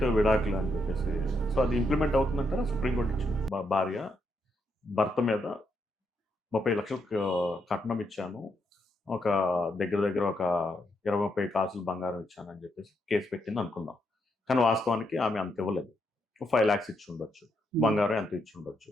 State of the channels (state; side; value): normal; both; correlation 0.79